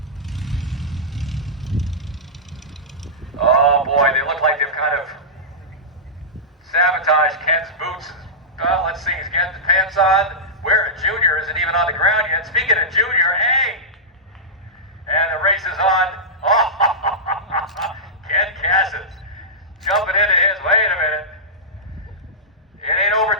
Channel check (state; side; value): normal; both; correlation -0.13